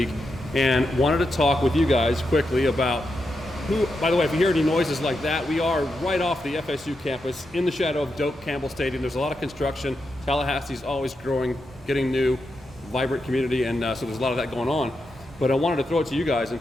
and wanted to talk with you guys quickly about who, by the way, if you hear any noises like that, we are right off the FSU campus in the shadow of Doak Campbell Stadium. There's a lot of construction. Tallahassee's always growing, getting new, vibrant community, and so there's a lot of that going on. But I wanted to throw it to you guys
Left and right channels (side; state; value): both; normal; correlation 0.86